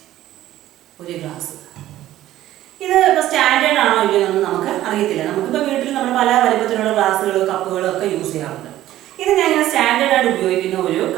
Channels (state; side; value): quieter; left; 14.0 dB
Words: ഒരു ഗ്ലാസ് ഇത് ഇപ്പോൾ സ്റ്റാൻഡേർഡ് ആണോ ഇല്ലയോ എന്നൊന്നും നമുക്ക് അറിയത്തില്ല. നമുക്കിപ്പോൾ വീട്ടിൽ നമ്മൾ പല വലുപ്പത്തിലുള്ള ഗ്ലാസ്സുകളും കപ്പുകളും ഒക്കെ യൂസ് ചെയ്യാറുണ്ട്. ഇത് ഞാൻ സ്റ്റാൻഡേർഡ് ആയിട്ട് ഉപയോഗിക്കുന്ന ഒരു